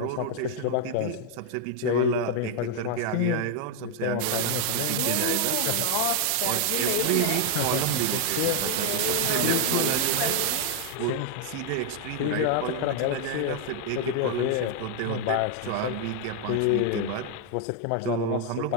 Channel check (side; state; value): both; different; correlation 0.00